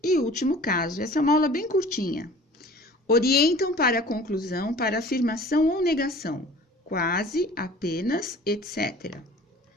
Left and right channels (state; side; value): normal; both; correlation 0.46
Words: e último caso, essa é uma aula bem curtinha. Orientam para a conclusão, para afirmação ou negação, quase, apenas, etc.